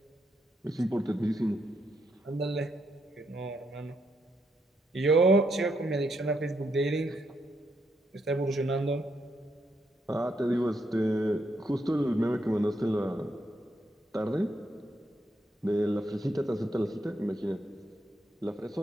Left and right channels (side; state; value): both; normal; correlation 0.78